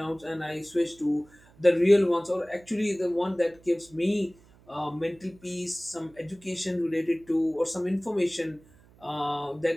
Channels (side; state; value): right; noise; hum, 27 dB below the sound